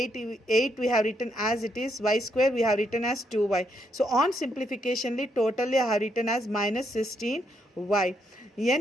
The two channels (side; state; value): both; normal; correlation 0.77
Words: we have written as it is, y square we have written as 2y. So on simplificationly totally I have written as minus 16y.